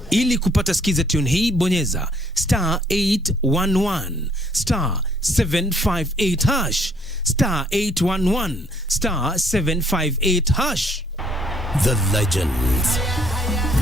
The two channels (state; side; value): normal; both; correlation 0.64